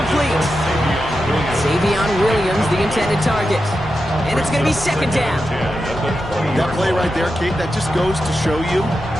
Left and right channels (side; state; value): left; noise; rumble, 14 dB below the sound